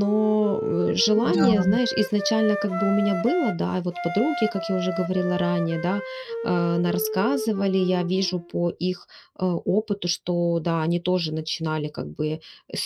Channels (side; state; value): both; identical; correlation 1.00